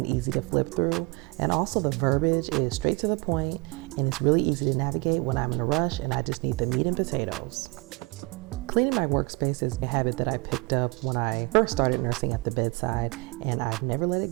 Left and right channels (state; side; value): quieter; left; 27.8 dB